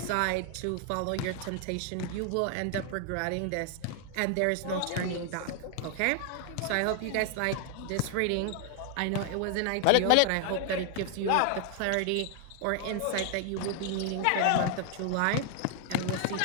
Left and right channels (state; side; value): different; both; correlation 0.00